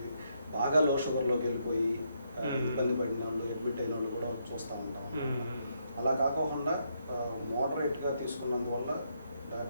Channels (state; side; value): inverted; both; correlation -0.76